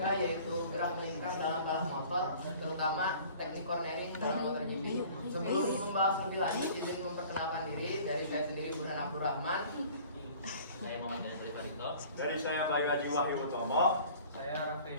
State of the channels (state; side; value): inverted; both; correlation -0.48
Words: yaitu gerak melingkar dalam balap motor, terutama teknik cornering dalam MotoGP. Sebelum membahas lebih lanjut, izin memperkenalkan diri. Dari saya sendiri Burhan Abdurrahman. Saya Muhammad Dani Pradipto. Dari saya Bayi Haji Wahyu Utomo. Saya Raffi